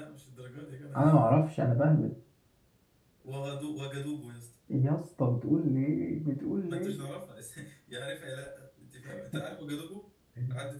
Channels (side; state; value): both; identical; correlation 1.00